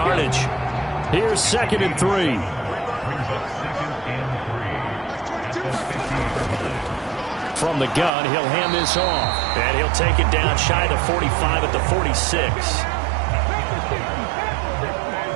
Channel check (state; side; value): drops out; left; at 8.1 s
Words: Here's 2nd and 3. From the gun, he'll hand this off. And he'll take it down shy of the 45 at the 46.